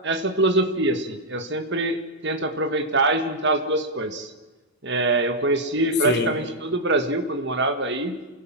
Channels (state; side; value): normal; both; correlation -0.03